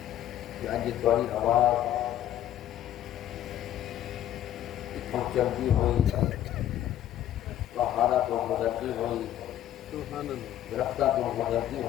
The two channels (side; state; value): right; quieter; 12.0 dB